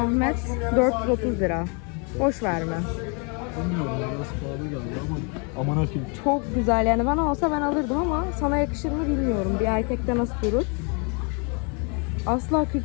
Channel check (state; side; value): quieter; right; 35.2 dB